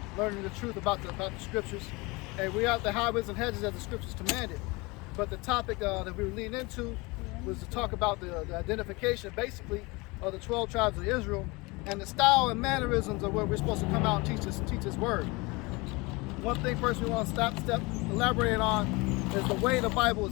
learning the truth about the scriptures. And we are out the highways and hedges as the scriptures commanded. But the topic that we were leading into was to talk about the identification, basically, of the 12 tribes of Israel and the style and mannerisms of what we're supposed to come out and teach this word. One thing first we want to elaborate on is the way the Bible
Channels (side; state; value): right; quieter; 25.2 dB